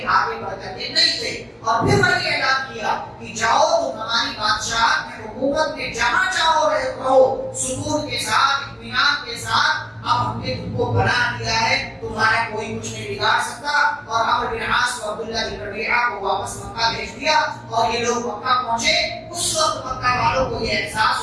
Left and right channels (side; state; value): both; identical; correlation 1.00